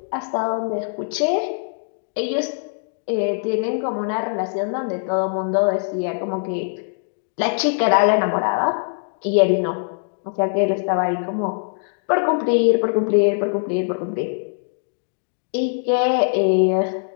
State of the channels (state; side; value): silent; right; digital silence